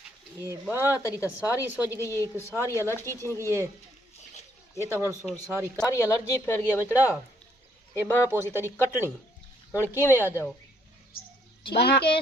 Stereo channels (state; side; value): normal; both; correlation 0.68